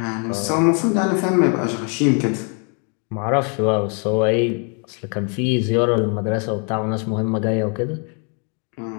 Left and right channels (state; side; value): quieter; right; 38.9 dB